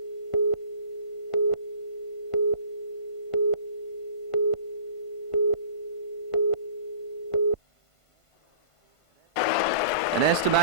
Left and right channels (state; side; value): late; right; 1.5 ms